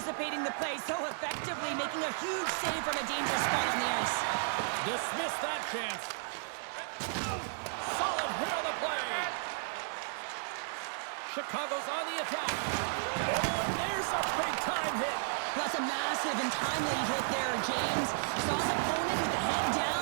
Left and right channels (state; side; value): silent; left; digital silence